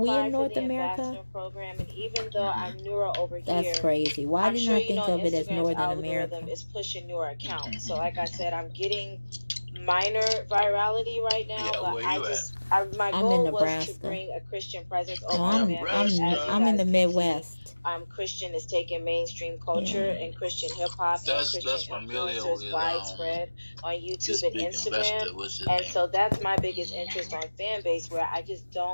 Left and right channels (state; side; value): inverted; both; correlation -1.00